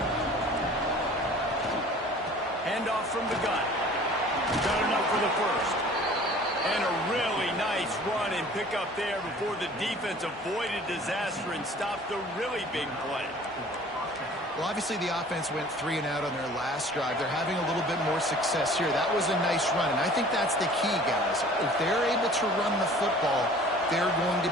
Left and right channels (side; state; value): both; normal; correlation 0.48